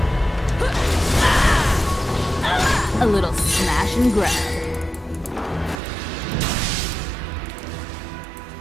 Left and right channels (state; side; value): drops out; left; at 5.8 s